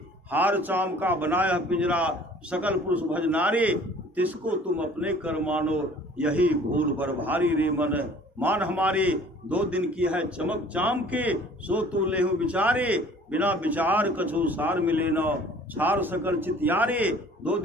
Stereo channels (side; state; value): both; normal; correlation 0.51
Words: हार चाम का बनाया पिंजरा, सकल पुरुष भज नारी। तिसको तुम अपने कर मानो, यही भूल बर भारी। रे मन मान हमारी, 2 दिन की है चमक चाम के। सो तू लेहु विचारे, बिना विचार कछु सार मिले न। छार सकल चितियारे, 2